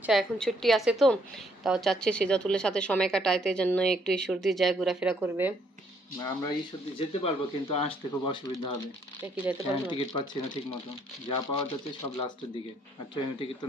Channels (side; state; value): both; normal; correlation 0.68